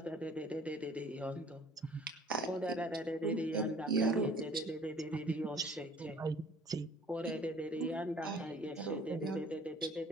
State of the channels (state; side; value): normal; both; correlation 0.53